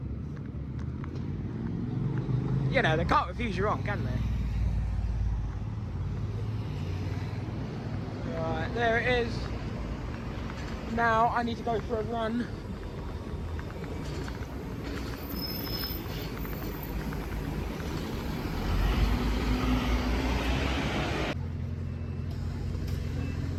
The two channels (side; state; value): both; identical; correlation 1.00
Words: You know, they can't refuse you wrong, can they? Right, there it is. Now I need to go for a run.